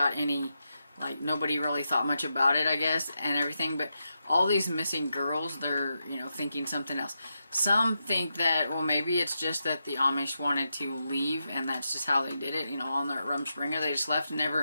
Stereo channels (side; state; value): both; inverted; correlation -0.86